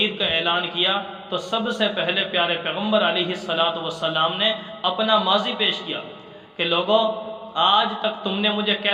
کا اعلان کیا، تو سب سے پہلے پیارے پیغمبر علیہ السلام نے اپنا ماضی پیش کیا کہ لوگوں، آج تک تم نے مجھے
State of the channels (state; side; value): identical; both; correlation 1.00